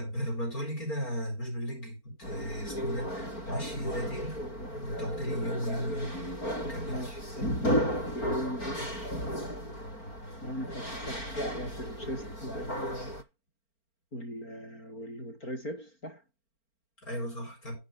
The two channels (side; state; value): right; late; 4.4 ms